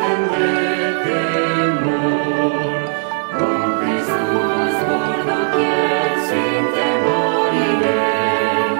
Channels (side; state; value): left; silent; digital silence